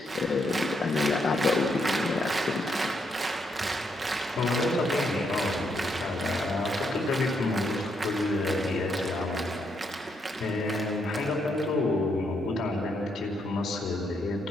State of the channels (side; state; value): both; normal; correlation 0.77